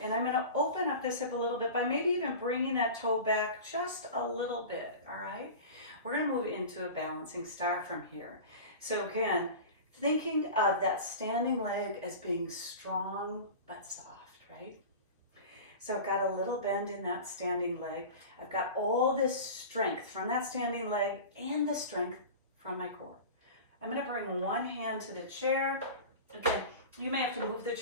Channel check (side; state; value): both; inverted; correlation -0.33